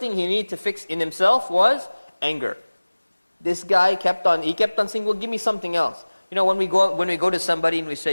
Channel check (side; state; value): both; inverted; correlation -1.00